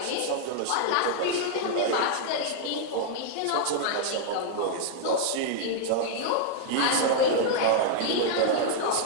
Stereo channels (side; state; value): both; different; correlation -0.01